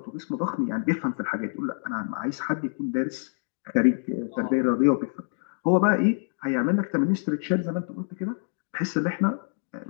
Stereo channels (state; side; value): silent; right; 60 dB below the other